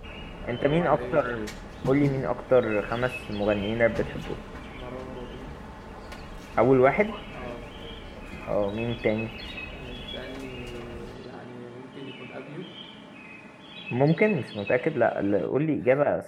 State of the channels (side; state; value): both; identical; correlation 1.00